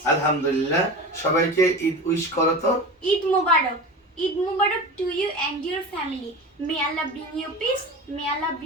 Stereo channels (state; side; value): normal; both; correlation 0.30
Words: আলহামদুলিল্লাহ। সবাইকে ঈদ উইশ করো তো। ঈদ মুবারক। ঈদ মুবারক to you and your family. May Allah bring you peace, may Allah